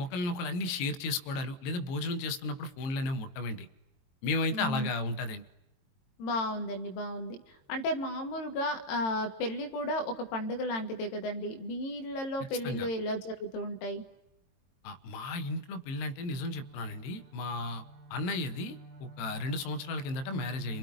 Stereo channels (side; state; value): right; late; 22 ms